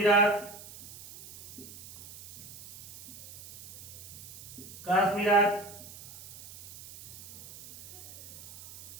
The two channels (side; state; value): right; noise; hiss, 16 dB below the sound